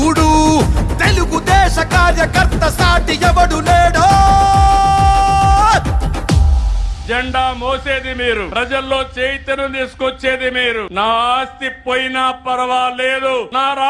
తెలుగుదేశ కార్యకర్త సాటి ఎవడు లేడో. జెండా మోసేది మీరు, ప్రజల్లో చైతన్యం తీసుకొచ్చేది మీరు. నా ఆస్తి పోయినా పర్వాలేదు, నా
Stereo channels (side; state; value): both; identical; correlation 1.00